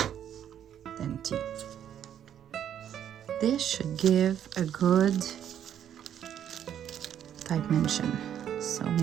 than tea. This should give a good dimension. So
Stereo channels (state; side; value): quieter; left; 9.8 dB